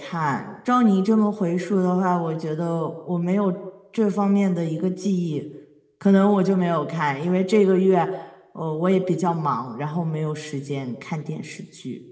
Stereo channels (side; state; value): both; identical; correlation 1.00